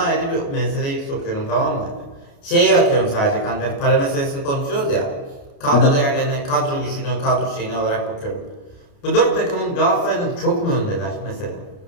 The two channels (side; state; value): right; late; 29 ms